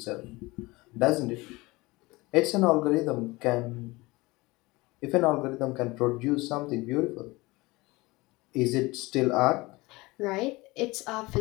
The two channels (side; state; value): right; quieter; 22.2 dB